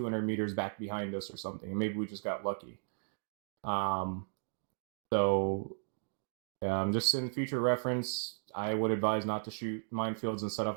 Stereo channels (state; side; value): silent; left; digital silence